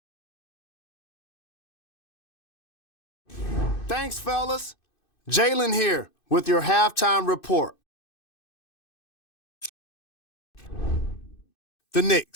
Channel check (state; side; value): late; right; 2.6 ms